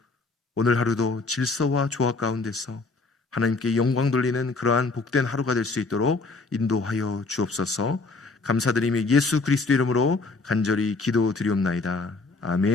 오늘 하루도 질서와 조화 가운데서 하나님께 영광 돌리는 그러한 복된 하루가 될 수 있도록 인도하여 주옵소서. 감사드리며 예수 그리스도 이름으로 간절히 기도드리옵나이다.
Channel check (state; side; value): quieter; right; 3.7 dB